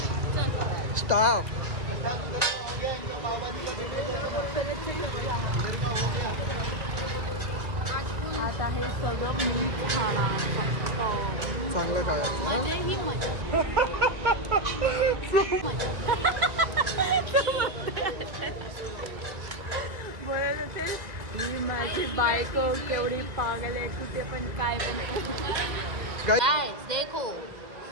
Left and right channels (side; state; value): left; late; 1.9 ms